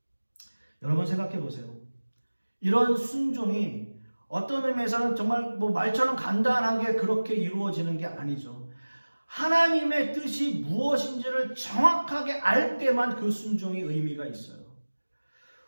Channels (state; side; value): inverted; both; correlation -1.00